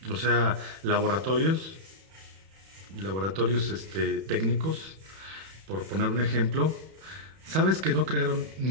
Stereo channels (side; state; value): left; late; 31 ms